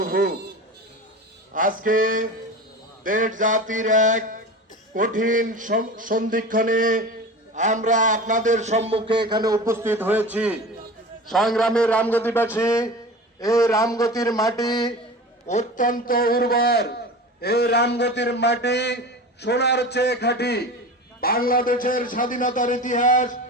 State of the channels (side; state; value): both; normal; correlation 0.32